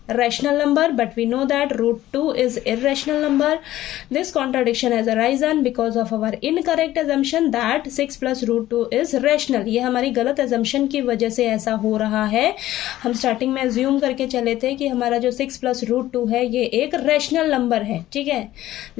rational number, but we know that √2 is irrational number. This contradiction has arisen because of our incorrect assumption that 6 + √2 is rational. ये हमारी गलत assumption की वजह से ऐसा हो रहा है। हम स्टार्टिंग में assume करके चले थे कि हमारा जो 6 + √2 है ये एक rational number है, ठीक है।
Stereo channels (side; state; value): right; quieter; 14.5 dB